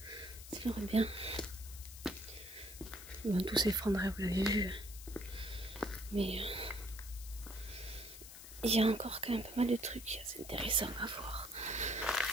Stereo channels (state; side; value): noise; left; hiss, 14 dB below the sound